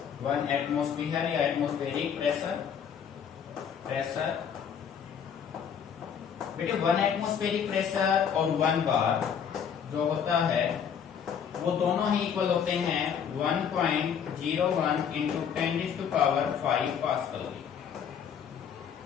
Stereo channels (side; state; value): right; quieter; 7.7 dB